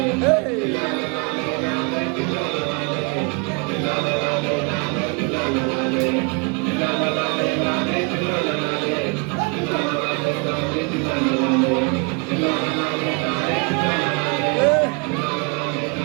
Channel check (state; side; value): quieter; left; 32.5 dB